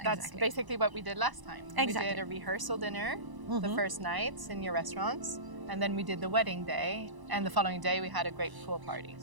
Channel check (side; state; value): left; late; 1.0 ms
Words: That's basically what we did last time. Exactly. We did a rehearsal dinner the first night in your restaurants, and then we did the wedding day, and the following day we had a great pool party.